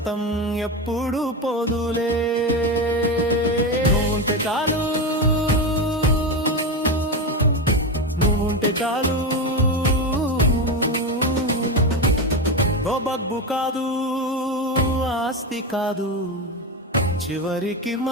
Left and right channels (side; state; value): both; normal; correlation 0.16